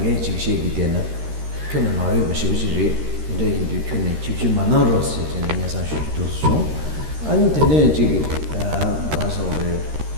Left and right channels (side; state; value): left; late; 13 ms